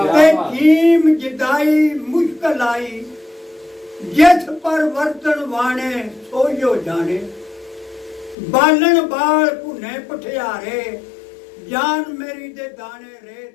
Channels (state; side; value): drops out; right; at 8.3 s